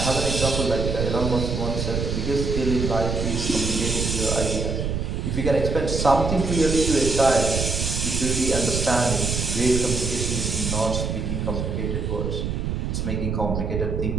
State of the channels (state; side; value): noise; right; rumble, 1 dB below the sound